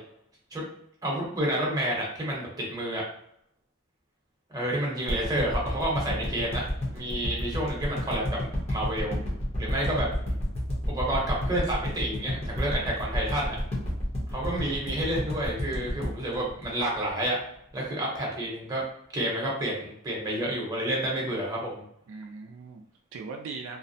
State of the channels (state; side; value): normal; both; correlation 0.42